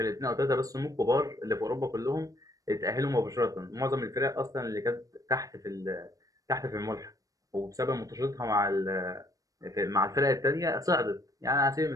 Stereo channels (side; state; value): left; late; 0.17 ms